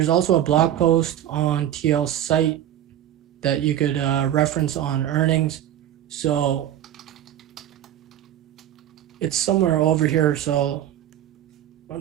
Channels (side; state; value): left; quieter; 11.5 dB